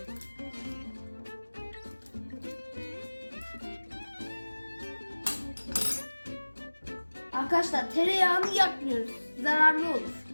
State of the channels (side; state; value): both; inverted; correlation -1.00